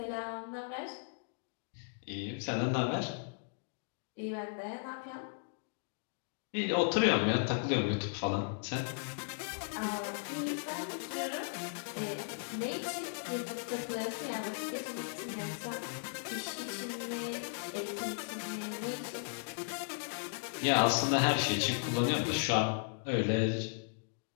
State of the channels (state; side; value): silent; right; digital silence